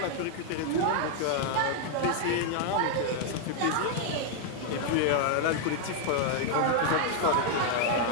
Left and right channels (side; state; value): both; different; correlation 0.00